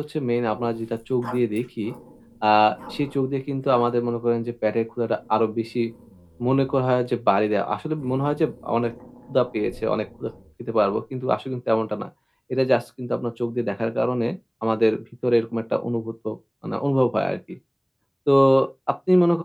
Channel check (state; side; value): identical; both; correlation 1.00